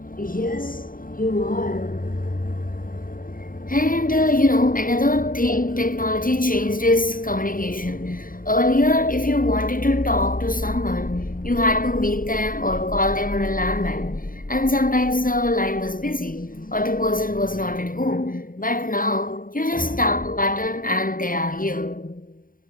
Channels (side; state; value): right; late; 0.41 ms